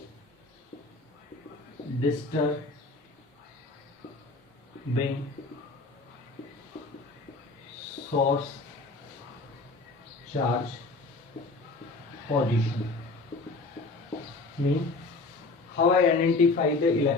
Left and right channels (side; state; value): right; quieter; 3.5 dB